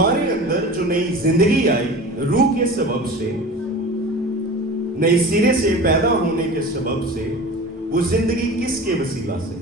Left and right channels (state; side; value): normal; both; correlation 0.35